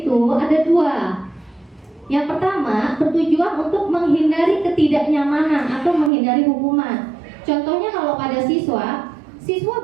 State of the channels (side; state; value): left; drops out; at 6.1 s